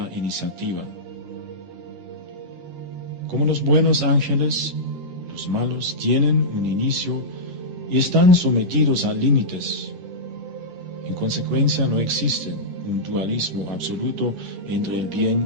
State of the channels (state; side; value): late; left; 11 ms